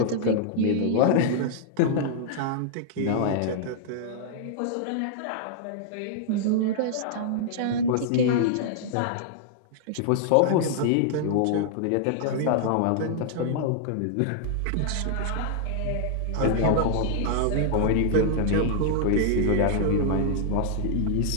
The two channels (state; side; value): different; both; correlation -0.01